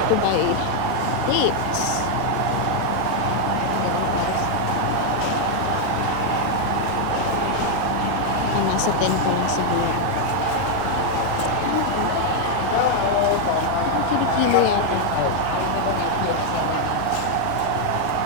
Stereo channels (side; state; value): both; different; correlation 0.00